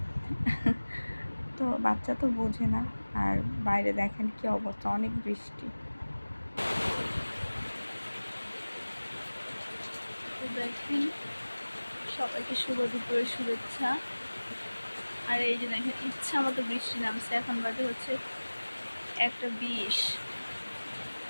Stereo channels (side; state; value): both; inverted; correlation -1.00